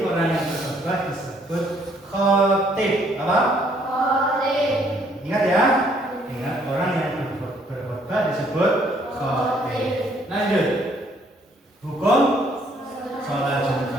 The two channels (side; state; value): both; normal; correlation 0.65